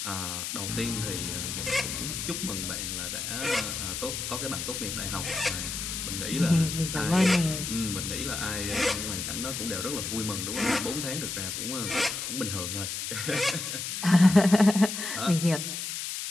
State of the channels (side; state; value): left; noise; hiss, 4 dB below the sound